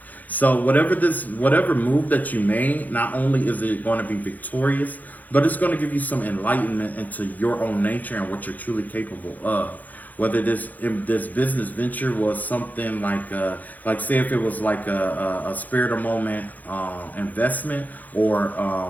So whatever move that you made, not only is it going to be victorious, but it's going to give you some enlightenment into your own nature and what you're truly capable of. Whether this business venture was something like say if it was like a spare the moment investment, or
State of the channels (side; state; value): right; late; 0.081 ms